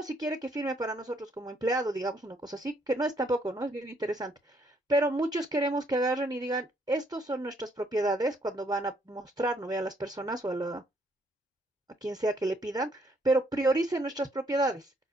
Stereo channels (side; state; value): both; normal; correlation 0.69